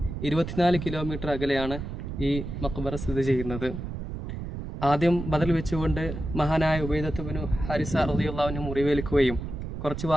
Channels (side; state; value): right; noise; rumble, 7 dB below the sound